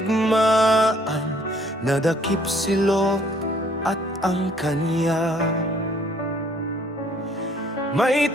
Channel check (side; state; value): both; normal; correlation 0.62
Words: nadakip si Lot at ang kanya. May